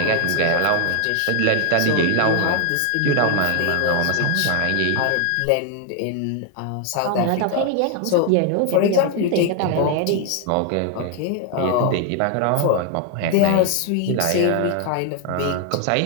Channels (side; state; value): both; different; correlation 0.00